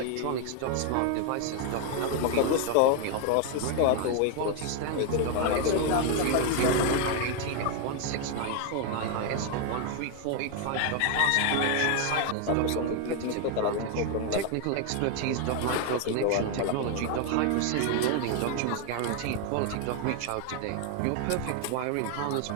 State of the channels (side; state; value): both; different; correlation 0.01